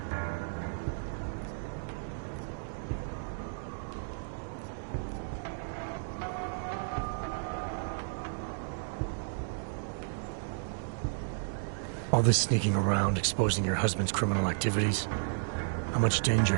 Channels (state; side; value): silent; left; digital silence